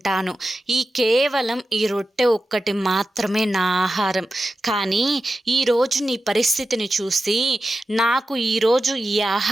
కేవలం ఈ రొట్టె ఒక్కటి మాత్రమే నా ఆహారం. కానీ ఈరోజు నీ పరిస్థితిని చూసి నాకు ఈరోజు ఈ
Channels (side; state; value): both; normal; correlation 0.92